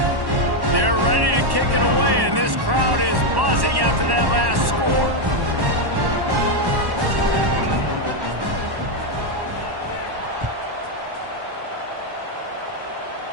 They're ready to kick it away, and this crowd is buzzing after that last score.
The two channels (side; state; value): left; late; 1.1 ms